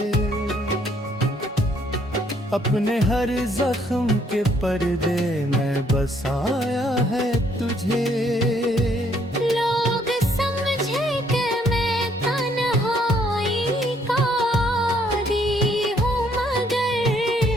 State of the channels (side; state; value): both; normal; correlation 0.67